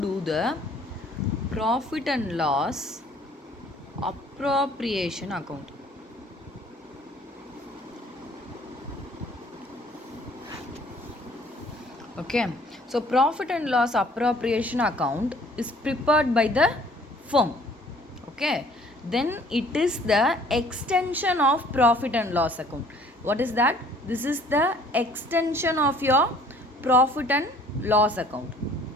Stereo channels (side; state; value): both; normal; correlation 0.56